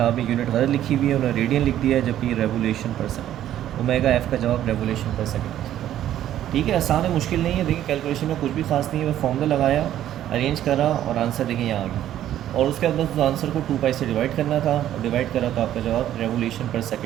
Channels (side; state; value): left; quieter; 11.9 dB